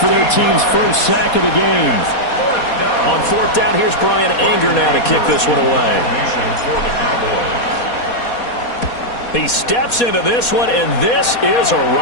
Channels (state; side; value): late; right; 4.2 ms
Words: their team's first sack of the game. On 4th down, here's Brian Anger now to kick this one away. He steps into this one, and this is a